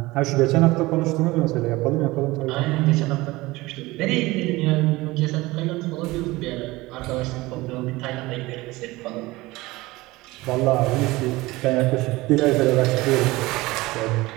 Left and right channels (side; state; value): left; quieter; 20.3 dB